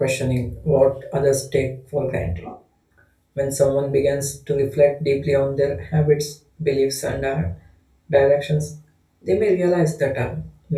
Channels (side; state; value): both; identical; correlation 1.00